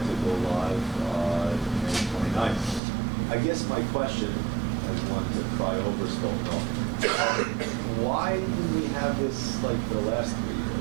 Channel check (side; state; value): left; drops out; at 2.8 s